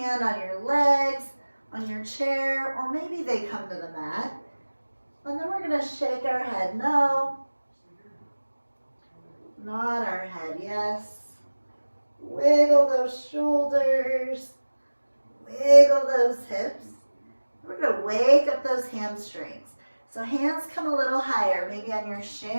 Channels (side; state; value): both; inverted; correlation -1.00